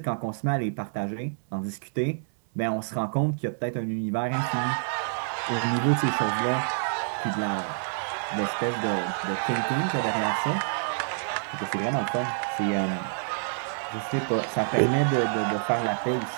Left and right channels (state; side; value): silent; left; 60 dB below the other